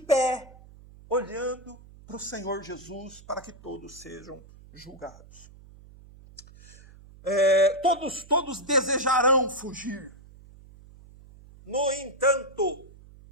olhando para o Senhor Jesus, para que todos sejam julgados. Todos desejarão fugir. No entanto,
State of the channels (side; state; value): right; noise; hum, 21 dB below the sound